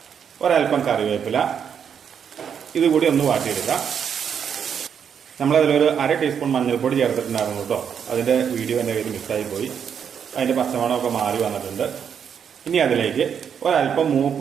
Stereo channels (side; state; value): left; quieter; 7.7 dB